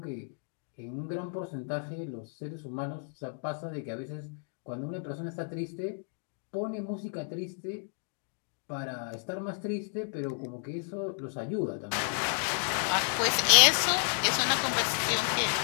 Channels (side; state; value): right; silent; 57 dB below the other